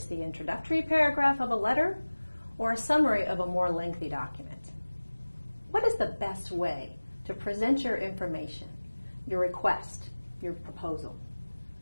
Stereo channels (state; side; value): inverted; both; correlation -1.00